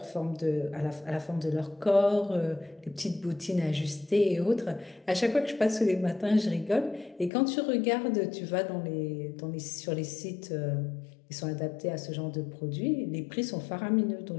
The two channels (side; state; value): right; drops out; at 7.3 s